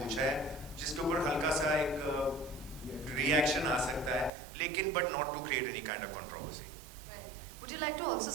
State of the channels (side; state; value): left; drops out; at 4.3 s